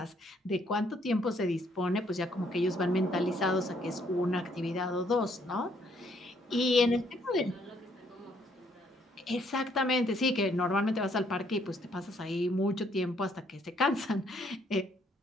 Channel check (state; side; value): normal; both; correlation 0.68